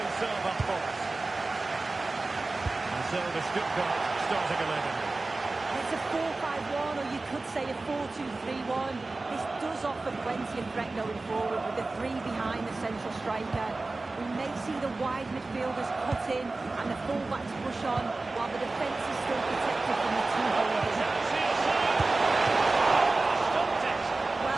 serve up for us. So the Stuttgart starting 11. It's a 4-5-1, or you could say a 4-2-3-1. This does offer plenty of threat going forward with the three behind the central striker. We may see the wide midfielders cut in and the full-backs push on, while the defence is still protected from the two holders.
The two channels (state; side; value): quieter; left; 3.3 dB